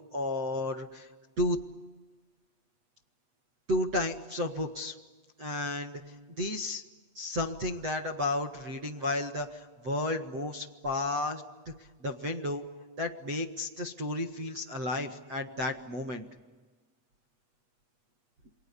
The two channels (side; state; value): left; late; 8.3 ms